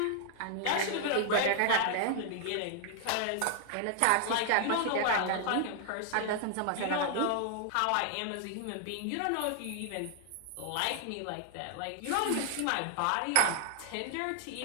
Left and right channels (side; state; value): both; different; correlation 0.00